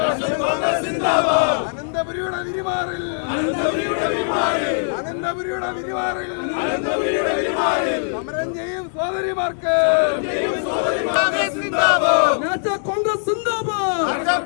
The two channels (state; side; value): silent; right; digital silence